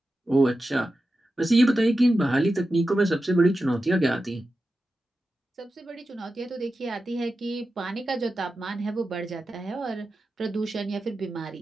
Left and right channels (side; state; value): both; normal; correlation 0.92